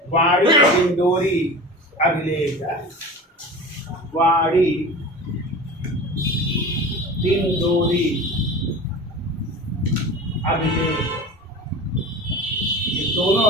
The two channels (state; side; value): normal; both; correlation 0.34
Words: वाड़ी डिंडोरी अभिलेख है। वाड़ी डिंडोरी अभिलेख। ये दोनों